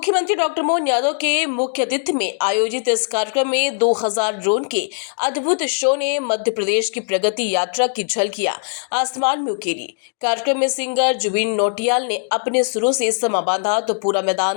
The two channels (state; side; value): silent; right; digital silence